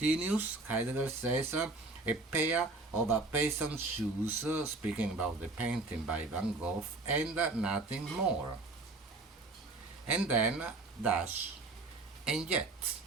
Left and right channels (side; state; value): left; quieter; 3.3 dB